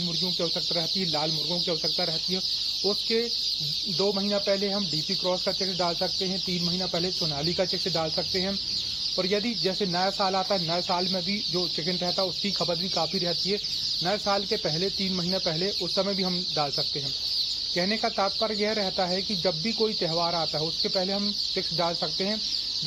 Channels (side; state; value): right; noise; hum, 24 dB below the sound